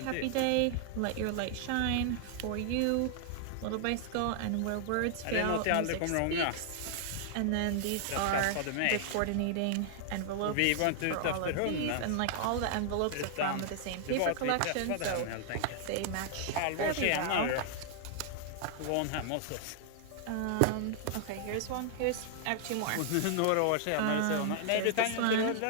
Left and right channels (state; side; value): different; both; correlation -0.01